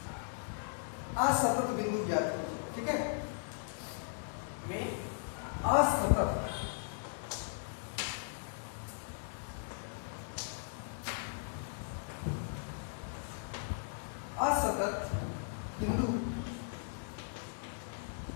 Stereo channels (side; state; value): right; silent; digital silence